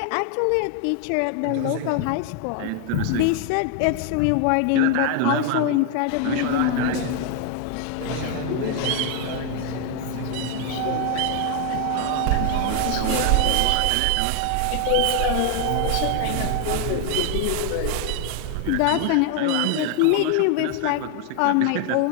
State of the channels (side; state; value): both; different; correlation 0.01